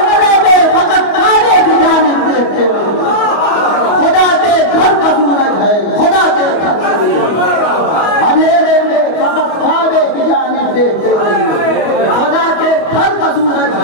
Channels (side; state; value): right; late; 25 ms